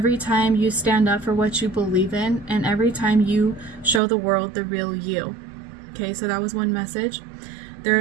time you stand up for what you believe in, and every time you show the world the real you. Okay, so that was one message. There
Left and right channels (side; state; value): left; drops out; at 4.0 s